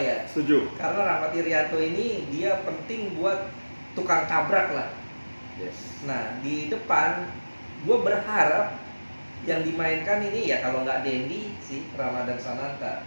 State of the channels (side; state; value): both; inverted; correlation -1.00